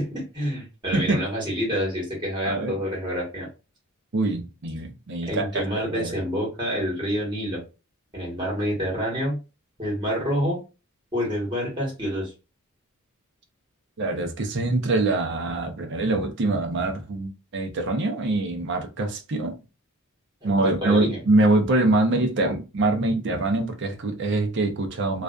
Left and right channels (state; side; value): normal; both; correlation 0.44